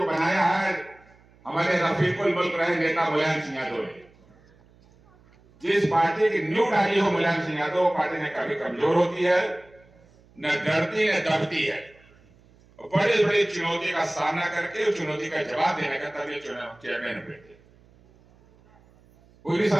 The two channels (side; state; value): right; noise; hum, 29 dB below the sound